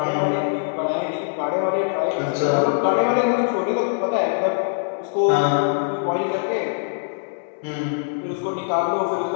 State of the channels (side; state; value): right; silent; digital silence